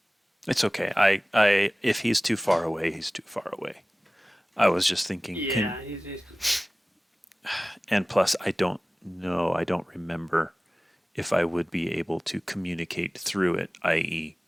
It's okay. I if he's too far away, he's too far away. I was just thinking. Yeah. And plus, I don't know. I don't remember if I would be able to communicate through it, i.e.,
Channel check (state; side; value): normal; both; correlation 0.97